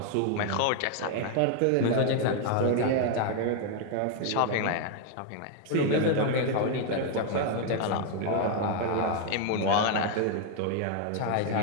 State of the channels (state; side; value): different; both; correlation 0.00